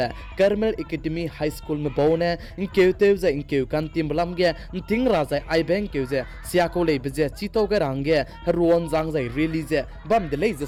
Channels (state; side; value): identical; both; correlation 1.00